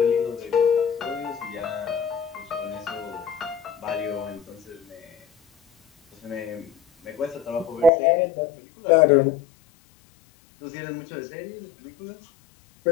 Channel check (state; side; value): drops out; right; at 7.9 s